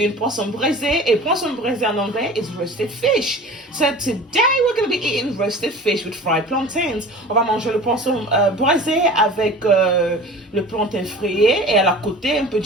Poisson Braisé. Et Poisson Braisé en anglais is roasted fish. So today we're going to be eating roasted fish with fried plantains. On va manger le poisson braisé avec le plantain frité et à la côté un peu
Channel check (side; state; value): both; normal; correlation 0.40